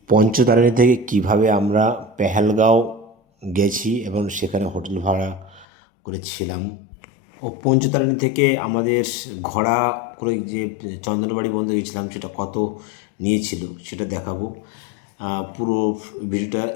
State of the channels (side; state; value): right; drops out; at 5.7 s